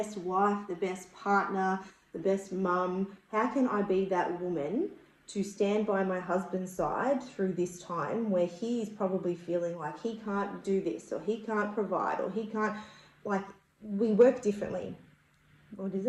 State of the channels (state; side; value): identical; both; correlation 1.00